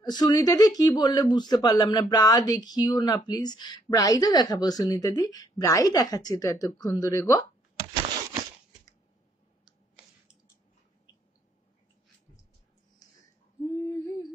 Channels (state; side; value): normal; both; correlation 0.69